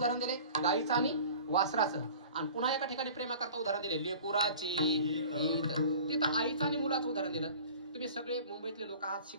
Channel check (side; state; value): both; inverted; correlation -0.44